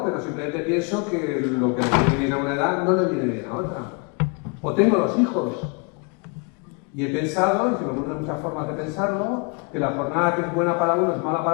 pero simplemente pienso que lo que le viene bien a una edad no le viene bien a otra. O tengo 2 hijos. Y he pensado, y se me ocurren muchas formas de pensarlo, que la jornada que es buena para uno es mala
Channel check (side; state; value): right; quieter; 33.5 dB